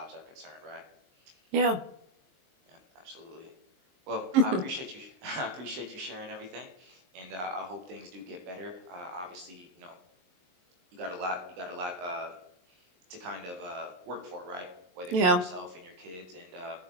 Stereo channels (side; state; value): left; late; 23 ms